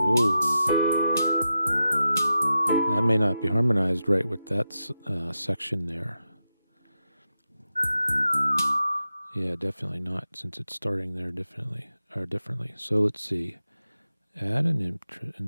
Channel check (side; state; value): both; inverted; correlation -0.89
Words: Ooh. That may not be harmonized right with that section there. Yeah, definitely not, since it's starting there differently. So let's see. Add an